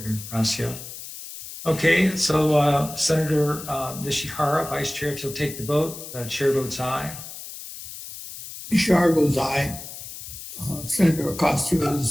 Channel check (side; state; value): left; noise; hiss, 12 dB below the sound